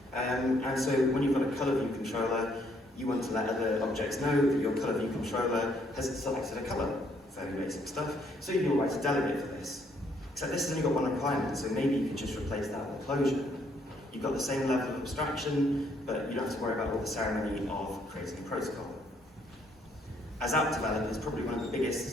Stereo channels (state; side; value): normal; both; correlation 0.68